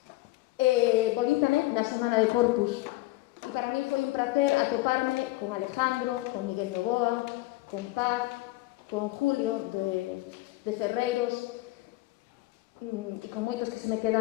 volví tamén na semana de Corpus, e para mí foi un placer atoparme con Alejandro, con Miguel Novoa, con Paz, con Julio de Ferreiros e con moitos que se me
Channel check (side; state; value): right; quieter; 19.4 dB